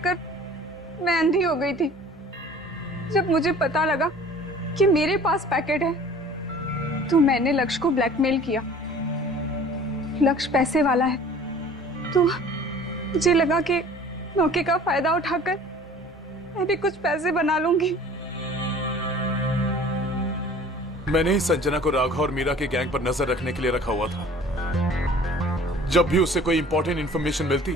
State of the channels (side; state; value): both; normal; correlation 0.47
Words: मैं अंधी हो गई थी। जब मुझे पता लगा कि मेरे पास पैकेट है तो मैंने लक्ष्य को ब्लैकमेल किया। लक्ष्य पैसे वाला है तो मुझे लगा कि मौके का फायदा उठाकर मैं भी कुछ पैसे बना लूंगी। मैंने ही संजना को राघव और मीरा के गैंग पर नजर रखने के लिए रखा हुआ था। जब भी उसे कोई इंपॉर्टेंट इंफॉर्मेशन मिलती